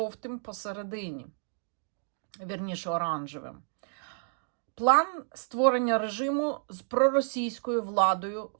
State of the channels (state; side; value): silent; left; digital silence